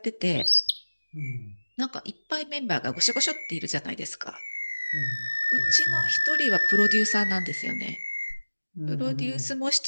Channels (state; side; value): inverted; both; correlation -1.00